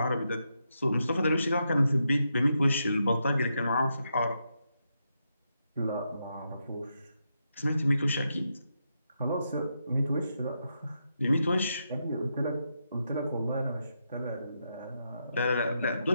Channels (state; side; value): inverted; both; correlation -0.83